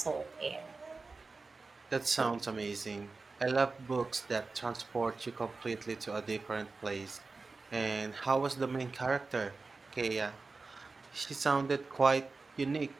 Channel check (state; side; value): quieter; left; 3.9 dB